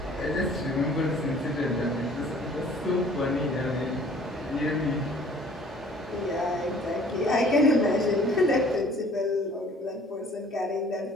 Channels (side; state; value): both; normal; correlation 0.53